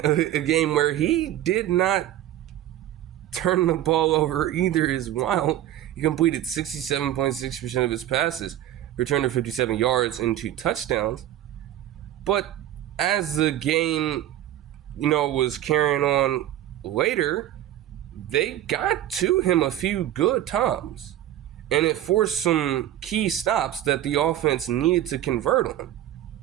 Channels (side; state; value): left; quieter; 12.7 dB